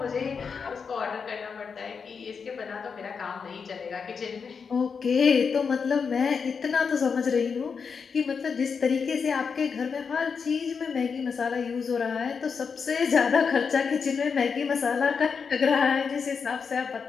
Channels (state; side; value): quieter; right; 5.8 dB